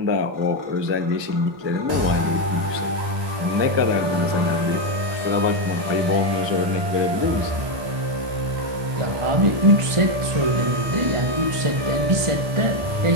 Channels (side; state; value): left; late; 1.2 ms